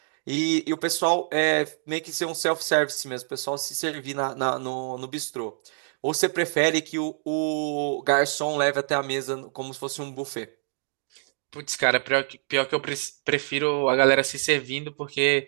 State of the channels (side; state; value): left; silent; digital silence